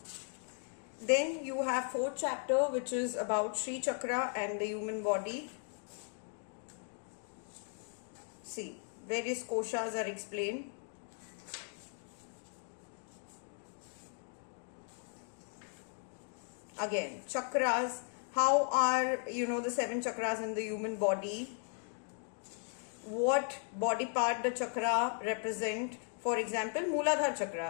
Then you have fourth chapter which is about Sri Chakra and the human body. See, various koshas are explained. Again, chakras, how are, the 7 chakras in the human body? What body part the chakra represent? For example, Mooladhara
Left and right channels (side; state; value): right; silent; 53 dB below the other